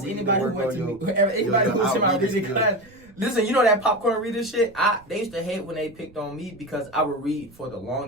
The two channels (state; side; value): noise; right; rumble, 26 dB below the sound